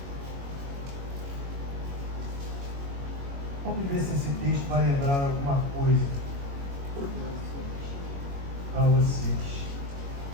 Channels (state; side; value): late; left; 21 ms